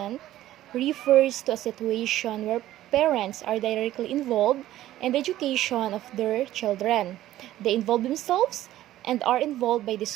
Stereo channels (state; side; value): quieter; left; 14.1 dB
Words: refers to a situation where parents are directly involved in the education of their children. They involve themselves and are involved by the